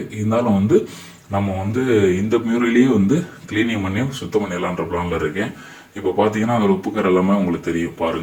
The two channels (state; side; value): identical; both; correlation 1.00